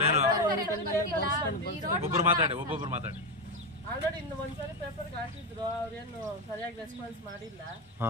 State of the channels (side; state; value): both; normal; correlation 0.10